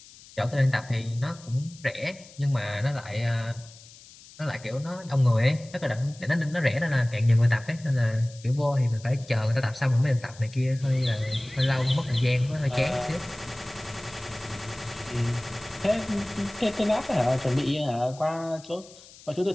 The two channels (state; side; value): noise; left; hiss, 21 dB below the sound